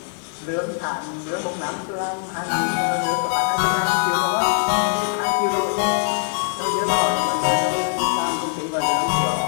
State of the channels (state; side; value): silent; right; digital silence